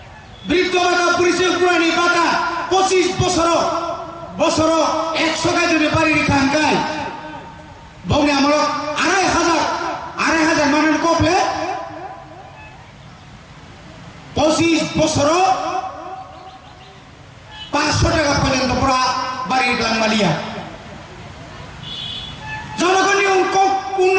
বৃদ্ধবাটা পুলিশের পুরানি বাটা 25 বছর 100 গাই যদি বাড়ি রিখানকাই বংনে আমল 2500 মানের কপলে 25 বছর 500 টাকা পর্যন্ত পড়া বাড়ির গ্লাংমালিয়া জনগণের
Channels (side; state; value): both; identical; correlation 1.00